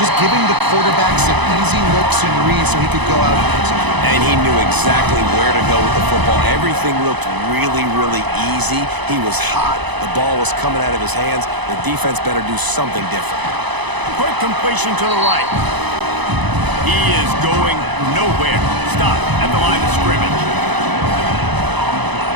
giving the quarterback some easy looks and reads so he could go out and execute. And he knew exactly where to go with the football. Everything looked really, really easy. He was hot. The ball was coming out of his hands. The defense better do something different. Quick completion to the right. He is going nowhere. Stop at the line of scrimmage.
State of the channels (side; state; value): left; late; 1.0 ms